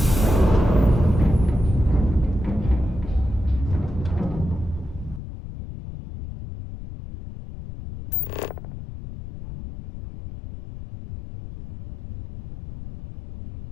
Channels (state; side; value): drops out; right; at 5.2 s